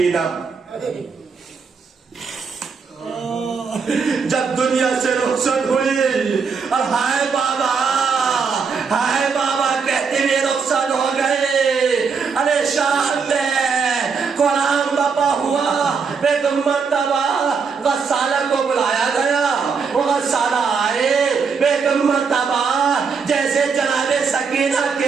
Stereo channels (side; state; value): left; quieter; 5.5 dB